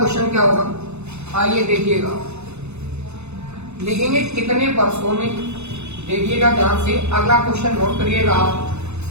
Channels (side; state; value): left; late; 0.81 ms